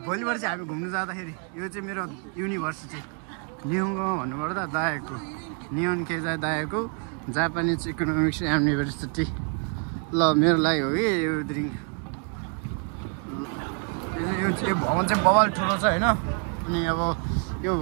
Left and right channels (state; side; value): quieter; left; 39.8 dB